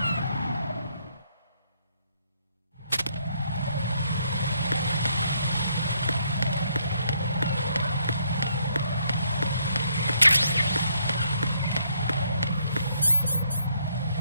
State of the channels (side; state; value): both; inverted; correlation -0.71